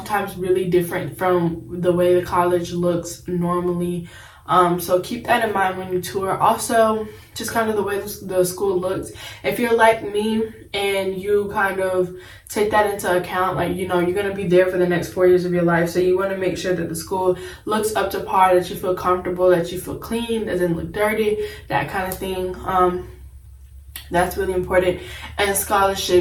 really different from the way the college looks normally. So keep that in mind when you tour. Also, just kind of the way the school looks. If you're like me and you kind of take that into account, like, you know, you're going to be there for the next 4 years of your life. So you want to make sure that the school looks up to par, that you feel comfortable, that you feel clean, doesn't look dirty, that kind of thing. That's really important. And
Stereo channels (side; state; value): both; identical; correlation 1.00